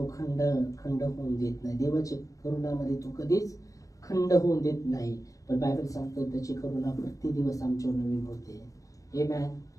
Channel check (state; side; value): late; right; 0.16 ms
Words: खंड होऊन देत नाही. देवाच्या करुणामध्ये तो कधीच खंड होऊन देत नाही. पण बायबल सांगतो त्याची करुणा प्रति दिवस आमच्यावर नवीन होते. आमेन.